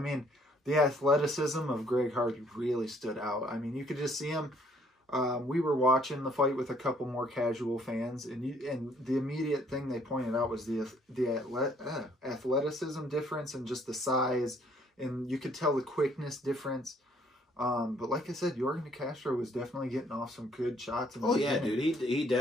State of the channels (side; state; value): both; normal; correlation 0.63